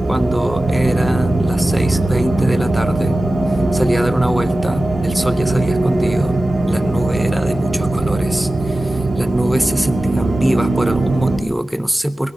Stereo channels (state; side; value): normal; both; correlation 0.95